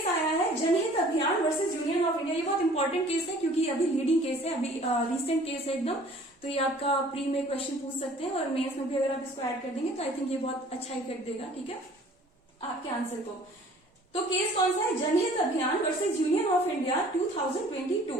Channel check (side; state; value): both; normal; correlation 0.52